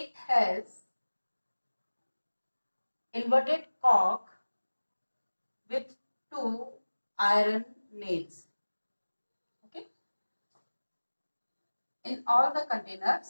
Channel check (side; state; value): both; inverted; correlation -1.00